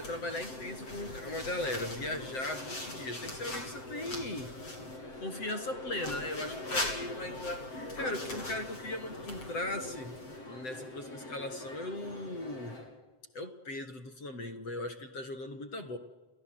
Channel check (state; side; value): late; right; 7.8 ms